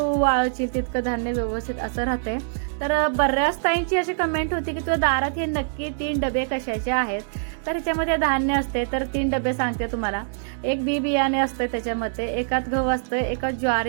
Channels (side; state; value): left; silent; digital silence